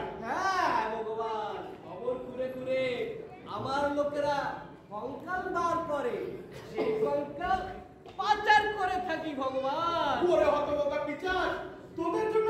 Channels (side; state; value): both; identical; correlation 1.00